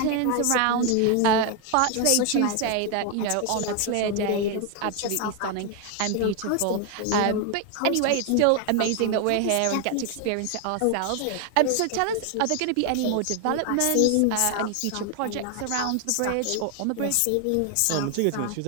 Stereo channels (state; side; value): different; both; correlation 0.01